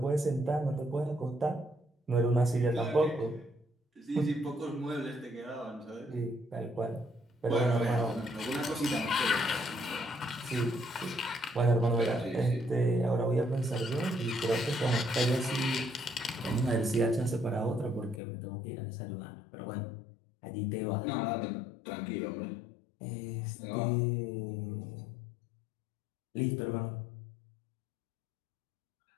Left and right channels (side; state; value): right; drops out; at 18.2 s